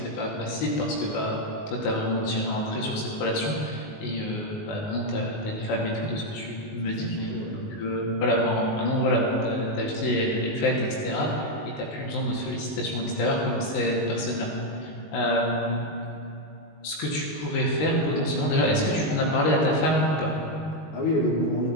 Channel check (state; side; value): late; right; 19 ms